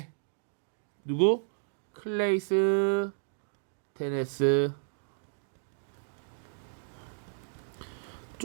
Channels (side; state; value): left; silent; digital silence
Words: 누구? 클레이스 테네스.